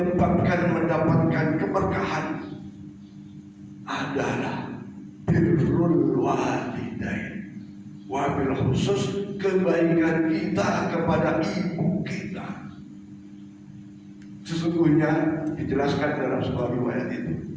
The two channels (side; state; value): both; identical; correlation 1.00